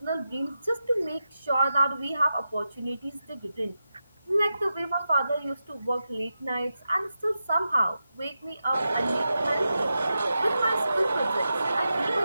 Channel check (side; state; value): both; inverted; correlation -0.89